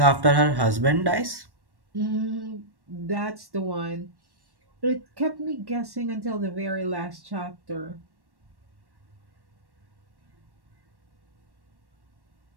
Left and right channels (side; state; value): left; late; 1.1 ms